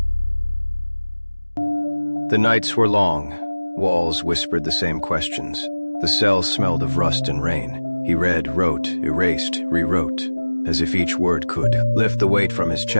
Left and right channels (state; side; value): inverted; both; correlation -1.00